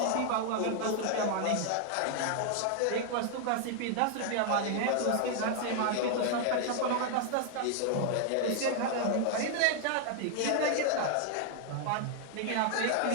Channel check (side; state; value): both; different; correlation 0.00